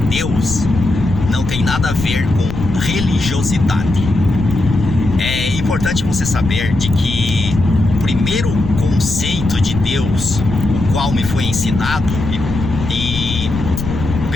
não tem nada a ver com religiosidade. É importante você saber de que o primeiro conceito de Deus, o qual me foi ensinado e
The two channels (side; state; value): left; noise; rumble, 6 dB below the sound